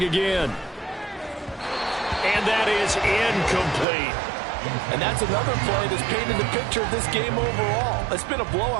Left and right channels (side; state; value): left; drops out; at 3.9 s